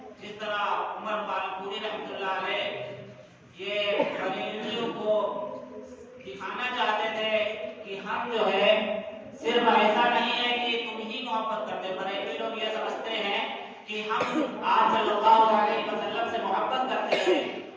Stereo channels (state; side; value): identical; both; correlation 1.00